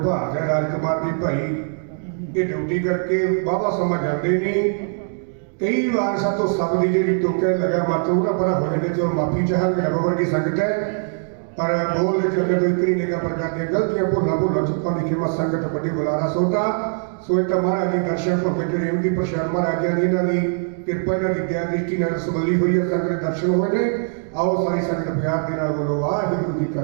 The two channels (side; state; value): left; silent; 63 dB below the other